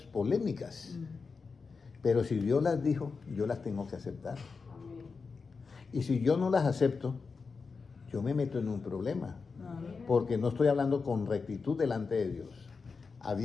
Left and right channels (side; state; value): right; quieter; 4.8 dB